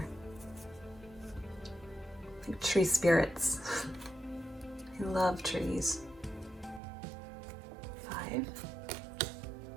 like tree spirits. I love trees. 5,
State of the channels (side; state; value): left; drops out; at 6.8 s